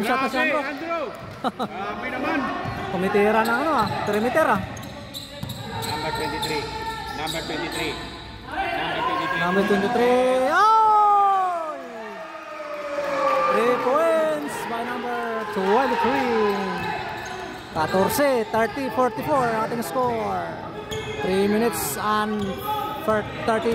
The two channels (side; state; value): both; identical; correlation 1.00